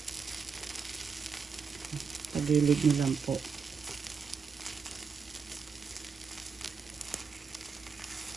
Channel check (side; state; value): left; quieter; 5.7 dB